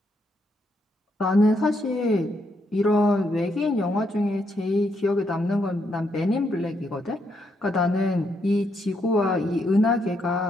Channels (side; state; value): both; normal; correlation 0.77